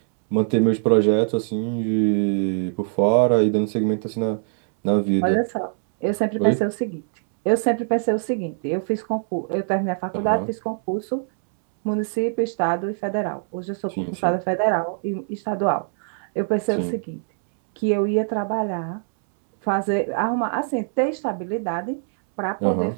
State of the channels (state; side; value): silent; left; 64 dB below the other